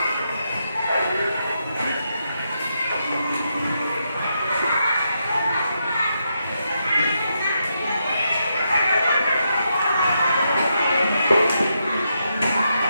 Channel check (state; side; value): inverted; both; correlation -0.82